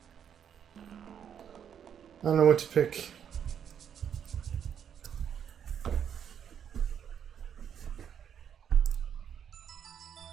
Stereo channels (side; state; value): left; quieter; 8.4 dB